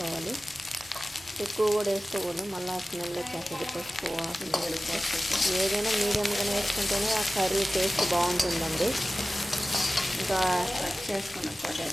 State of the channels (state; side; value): normal; both; correlation 0.96